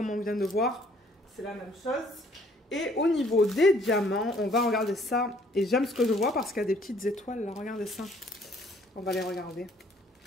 on vient de voir. C'est la même chose. Et au niveau des diamants, on va regarder ça. Et j'aime ce que je vois parce qu'il y a des petites étoiles, là. Regardez ça. On va les regarder.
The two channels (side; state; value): both; normal; correlation 0.61